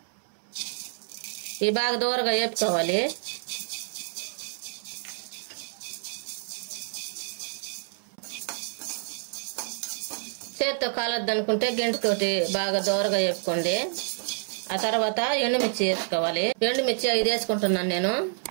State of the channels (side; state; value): left; silent; 59 dB below the other